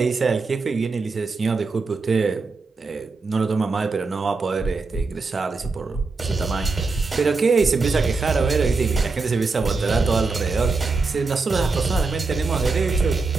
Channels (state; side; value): quieter; left; 4.1 dB